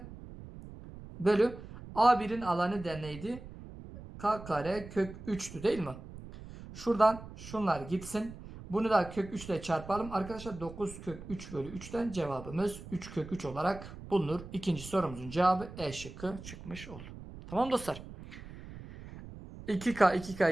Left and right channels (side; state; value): right; noise; rumble, 14 dB below the sound